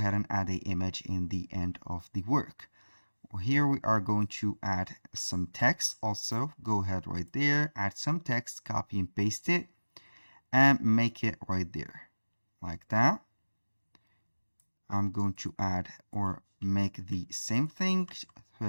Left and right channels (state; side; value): inverted; both; correlation -1.00